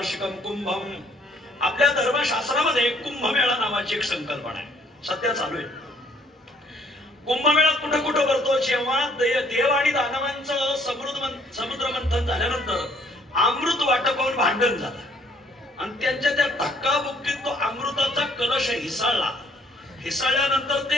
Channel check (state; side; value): normal; both; correlation 0.63